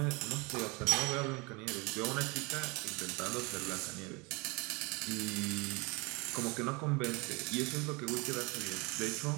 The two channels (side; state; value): left; quieter; 27.6 dB